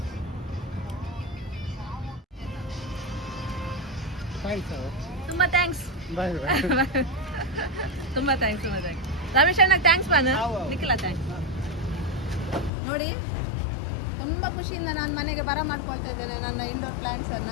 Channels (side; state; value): right; drops out; at 12.7 s